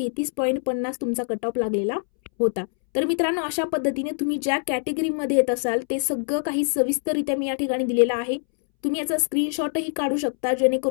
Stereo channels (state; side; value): silent; right; 63 dB below the other